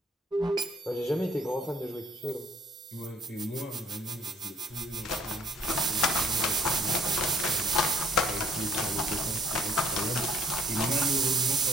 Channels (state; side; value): normal; both; correlation 0.60